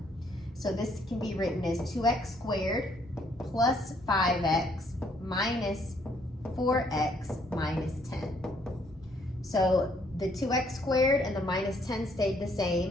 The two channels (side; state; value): both; normal; correlation 0.67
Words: So this can be written as 2x squared plus 5x minus 4x minus 10. So the 2x squared and the minus 10 stayed the